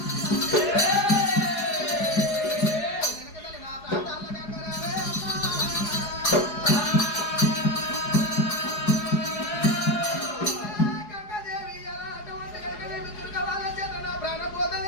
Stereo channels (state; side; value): late; right; 4.8 ms